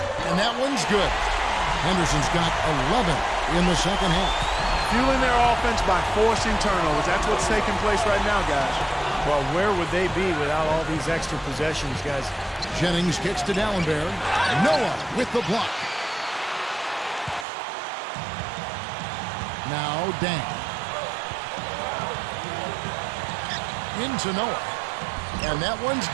And that one's good. Henderson's got 11 in the second half. Fueling their offense by forcing turnovers. That's what's taking place right now, guys. Well, where would they be without all these extra possessions, guys? Jennings kicks to Dallenberg. Noah with the block. Now Dang. Into Noah. And that one's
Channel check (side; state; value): left; drops out; at 17.4 s